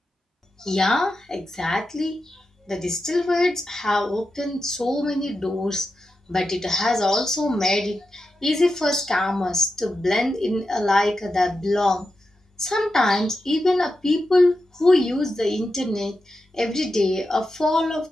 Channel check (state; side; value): normal; both; correlation 0.89